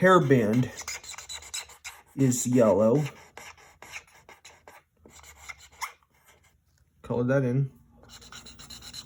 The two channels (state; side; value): identical; both; correlation 1.00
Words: is yellow. Color that in.